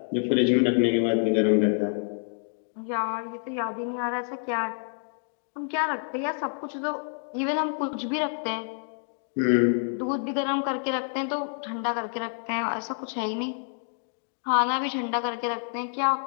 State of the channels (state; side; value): silent; right; 60 dB below the other